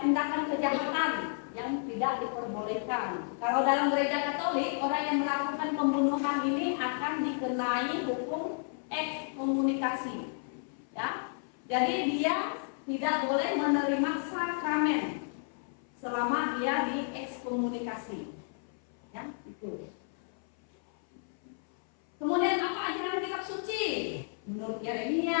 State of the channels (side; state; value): right; silent; 56 dB below the other